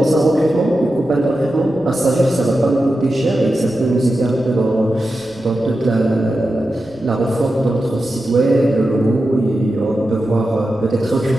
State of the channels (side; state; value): right; noise; rumble, 26 dB below the sound